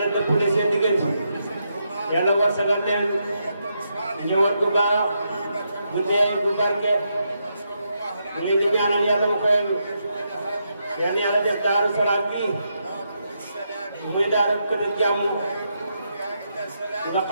dëppale seen diggante yàlla warsagal leen ñëwaat bu baax bu teey bu barke mu leen di ñaanal yàlla mu koy yàlla def Daaru Salaam bii muy daara kër jàmm nga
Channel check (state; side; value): inverted; both; correlation -0.81